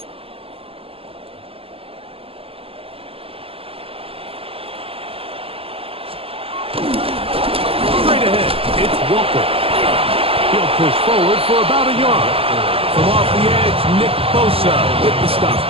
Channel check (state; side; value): late; left; 0.27 ms